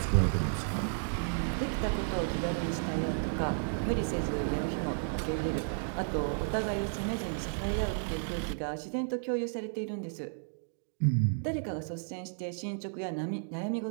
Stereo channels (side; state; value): left; silent; digital silence